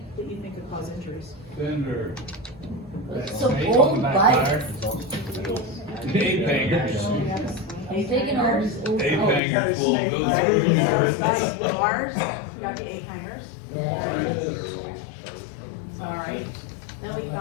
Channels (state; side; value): drops out; right; at 9.4 s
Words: that you think could cause injuries. Fender. It's so old bike. Ape hangers. I'm thinking all these old. Ape bikes. hangers will go through. Bars, got the eight hangers. Alright, then we